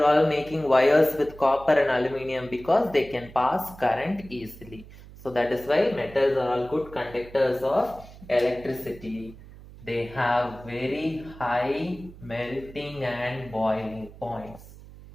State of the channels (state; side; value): noise; right; hum, 18 dB below the sound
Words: all making wires with copper and aluminium? Because they can pass current easily. So that is why metals are all good conductors of electricity. They have very high melting and boiling points.